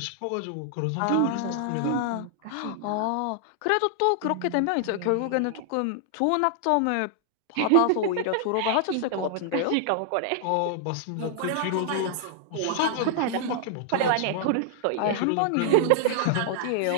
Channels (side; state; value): both; different; correlation -0.01